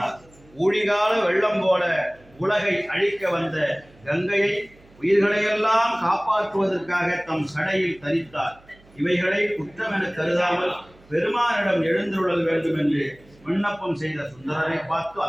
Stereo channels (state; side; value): noise; right; hum, 27 dB below the sound